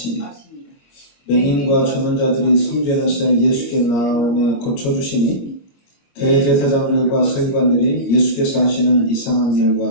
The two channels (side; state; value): right; late; 25 ms